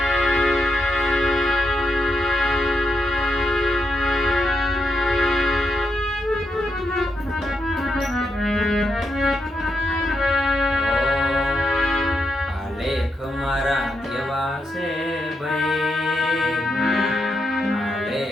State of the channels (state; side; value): normal; both; correlation 0.82